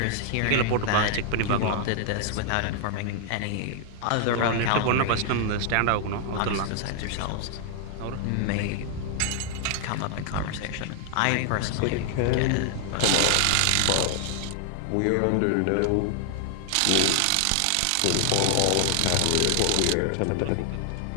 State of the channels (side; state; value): both; different; correlation 0.00